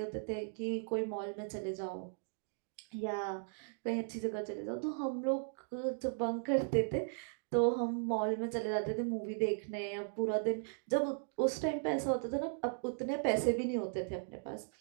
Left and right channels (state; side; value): silent; left; digital silence